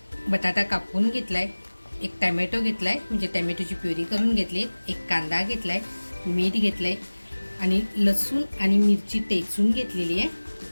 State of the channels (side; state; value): both; inverted; correlation -1.00